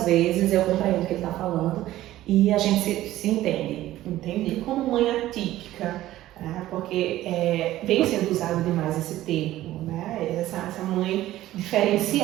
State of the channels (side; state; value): left; quieter; 14.8 dB